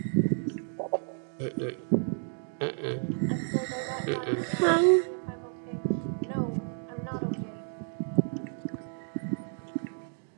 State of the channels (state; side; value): silent; left; 57 dB below the other